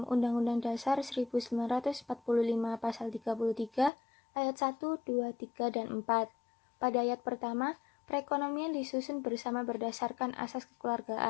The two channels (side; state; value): right; drops out; at 3.9 s